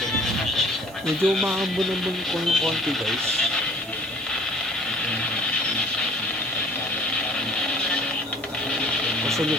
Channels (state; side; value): noise; right; hiss, 21 dB below the sound